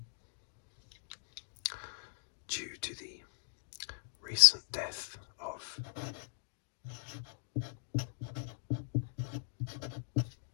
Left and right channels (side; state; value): right; silent; digital silence